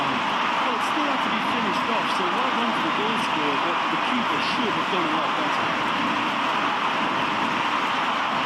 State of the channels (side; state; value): both; identical; correlation 1.00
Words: Well, it still had to be finished off, so well done for the goal scorer, but the keeper should have done a lot better.